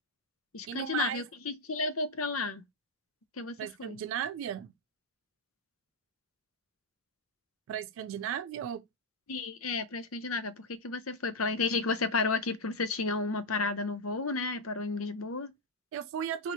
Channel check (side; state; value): both; normal; correlation 0.01